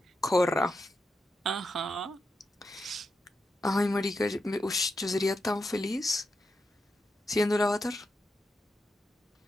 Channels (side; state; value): both; normal; correlation 0.86